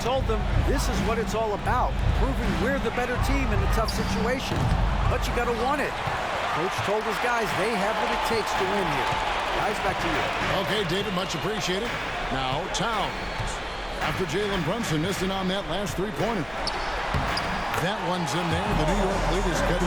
told them this is what it's all about, proving we're the better team in a tough situation. But you got to want it. Coach told his guys they have what it takes to win here. Guys, back to you. Okay, David, much appreciated. Now, Towns. After Jalen Brunson missed it on that last three-pointer. That one's in there. The New York lead is cut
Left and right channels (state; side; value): identical; both; correlation 1.00